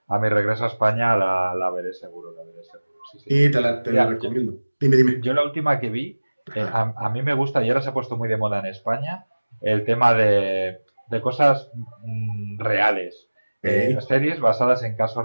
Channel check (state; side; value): inverted; both; correlation -1.00